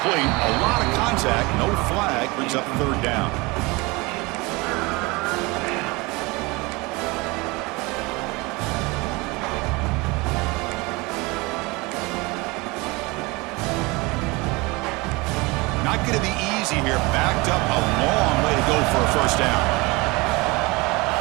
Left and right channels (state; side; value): quieter; left; 24.7 dB